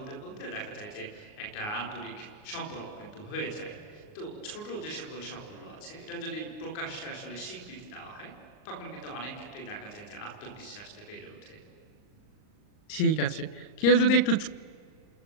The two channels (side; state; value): right; late; 38 ms